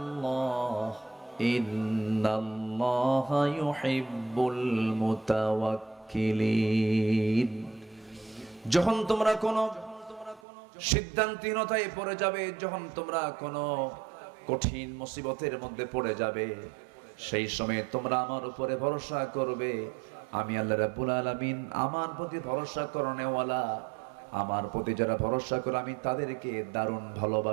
ইন্নাল্লাহা ইউহিব্বুল মুতাওয়াক্কিলিন। যখন তোমরা কোনো সিদ্ধান্তহীনতায় পড়ে যাবে, যখন তোমরা কোনো কঠিন মুসিবতের মধ্যে পড়ে যাবে, সেই সময় তোমরা আমার উপরে ভরসা করবে। আমি আল্লাহ রাব্বুল আলামিন আমার প্রতি ভরসা করনেওয়ালা, আমার প্রতি যারা ভরসা করে আমি তাদেরকে দারুণ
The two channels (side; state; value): left; drops out; at 10.4 s